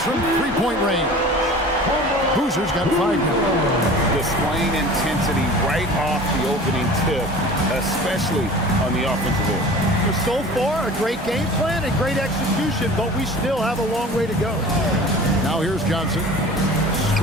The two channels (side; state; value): both; normal; correlation 0.41